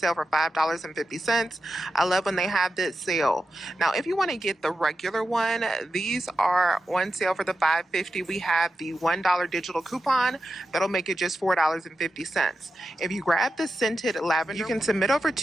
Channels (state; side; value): normal; both; correlation 0.90